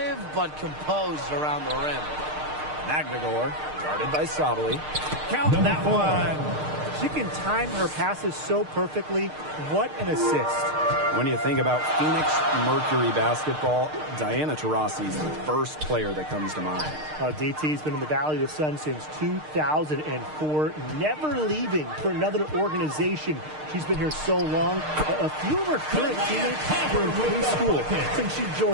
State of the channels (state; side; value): late; left; 6.6 ms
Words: but composed around the rim. Magdagor, guarded by Sabali. Count that one. She can time her passes so perfectly. What an assist. When you think about Phoenix Mercury basketball, Diana Taurasi's the first player that comes to mind. DT's been in the Valley of the Sun since 2004, never leaving for another organization. She's been here so long. A few of her current teammates were in preschool since she